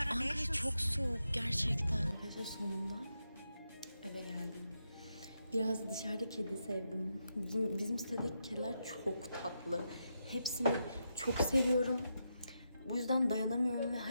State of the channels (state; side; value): inverted; both; correlation -0.84